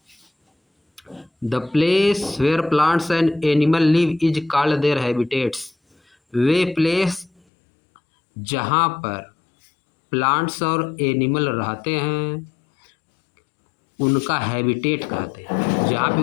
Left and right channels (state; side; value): drops out; right; at 7.4 s